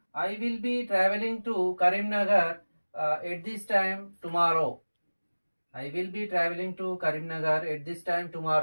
I will be travelling to Karimnagar at this time tomorrow. I will be travelling to Karimnagar at this time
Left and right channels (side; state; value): both; inverted; correlation -1.00